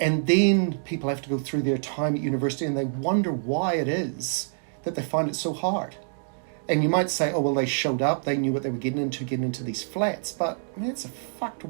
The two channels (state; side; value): silent; left; digital silence